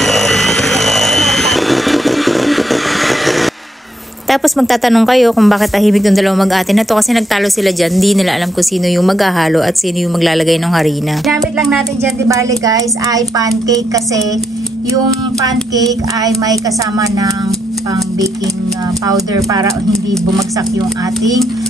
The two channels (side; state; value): both; normal; correlation 0.78